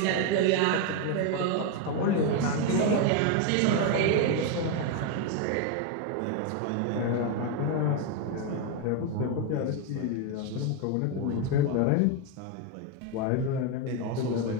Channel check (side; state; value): both; different; correlation 0.02